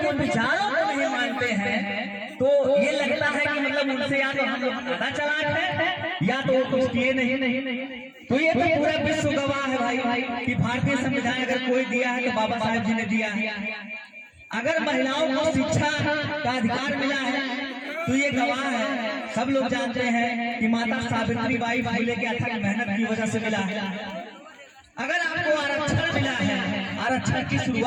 विचारों को नहीं मानते हैं तो ये लगता है कि मतलब उनसे या तो हम लोग ज्यादा चालाक हैं या तो वो कुछ किए नहीं। तो ये तो पूरा विश्व गवाह है भाई कि भारतीय संविधान अगर कोई दिया है तो बाबा साहेब जी ने दिया है। अगर महिलाओं को शिक्षा का अधिकार मिला है तो ये गवाह है, सब लोग जानते हैं कि माता सावित्रीबाई फुले के अथक मेहनत की वजह से मिला है। अगर आपको आरक्षण मिला है, आरक्षण की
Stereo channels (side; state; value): both; identical; correlation 1.00